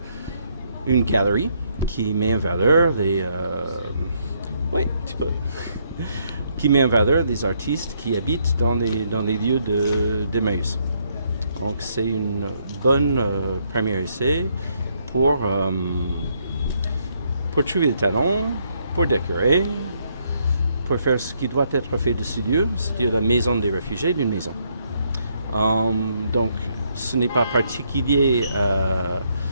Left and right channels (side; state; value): both; inverted; correlation -0.73